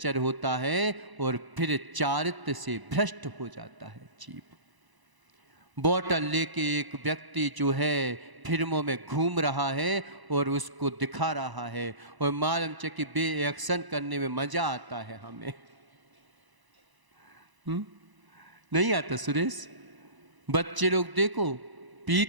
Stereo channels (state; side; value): late; left; 1.0 ms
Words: होता है और फिर चारित्र से भ्रष्ट हो जाता है जीव। बोतल लेके एक व्यक्ति जो है फिल्मों में घूम रहा है और उसको दिखा रहा है, और मालूम च कि बे एक्शन करने में मजा आता है हमें। नहीं आता सुरेश? बच्चे लोग देखो